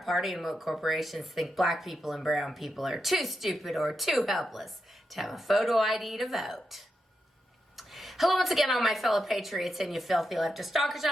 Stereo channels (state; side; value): normal; both; correlation 0.86